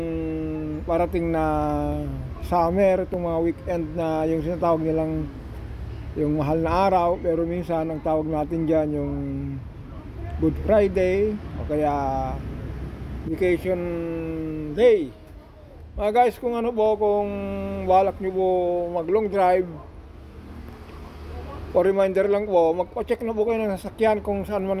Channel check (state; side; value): identical; both; correlation 1.00